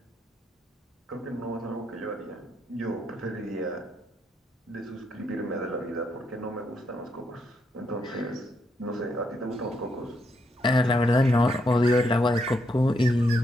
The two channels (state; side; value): normal; both; correlation 0.78